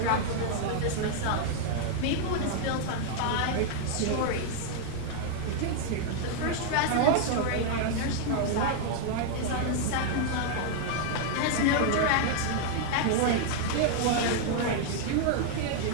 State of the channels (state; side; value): different; both; correlation 0.00